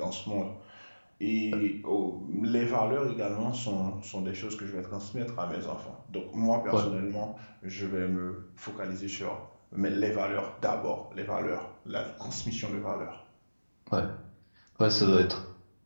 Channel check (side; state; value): both; inverted; correlation -1.00